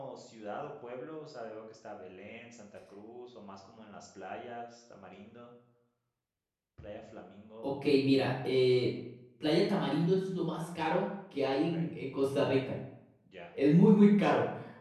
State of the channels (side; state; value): both; identical; correlation 1.00